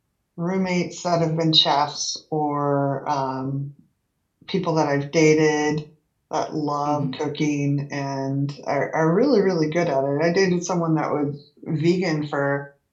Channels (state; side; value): identical; both; correlation 1.00